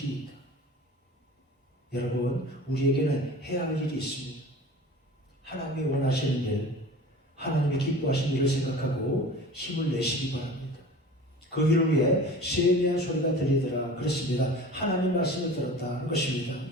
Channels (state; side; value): normal; both; correlation 0.39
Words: 있다. 여러분, 우리에게는 해야 할 일이 있습니다. 하나님이 원하시는 일, 하나님이 기뻐하시는 일을 생각하고 힘을 내시기 바랍니다. 그 일을 위해 세미한 소리가 들리더라 그랬습니다. 하나님 말씀을 들었다는 것입니다.